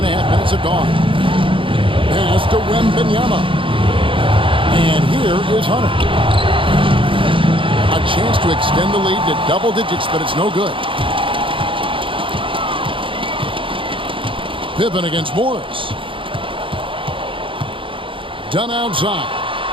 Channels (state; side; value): late; left; 0.25 ms